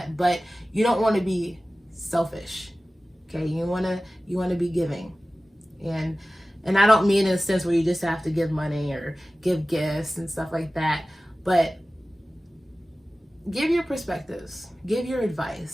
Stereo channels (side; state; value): both; normal; correlation 0.96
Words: but you don't want to be selfish. Okay, you want to be giving. And I don't mean in a sense where you just have to give money or give gifts and stuff like that, but give your perspectives, give your